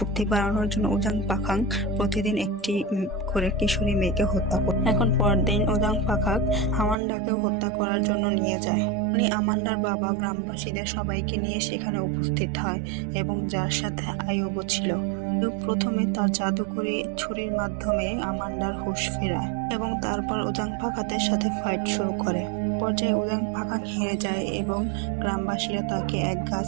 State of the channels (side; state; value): left; drops out; at 7.0 s